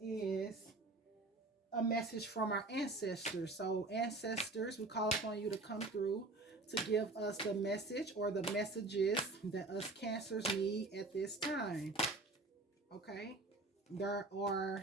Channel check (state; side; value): quieter; left; 3.1 dB